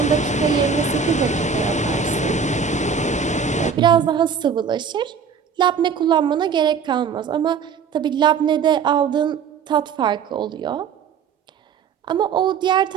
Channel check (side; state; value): left; quieter; 6.5 dB